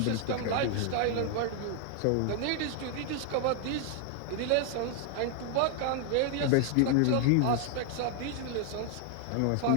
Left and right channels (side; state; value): both; different; correlation 0.00